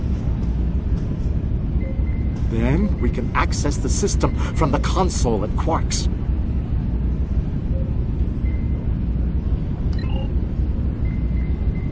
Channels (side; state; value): both; identical; correlation 1.00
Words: Then we can access the system from the console at Quark's.